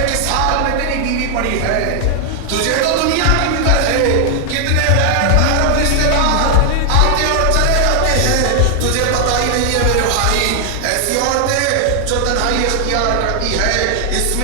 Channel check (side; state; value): both; different; correlation 0.00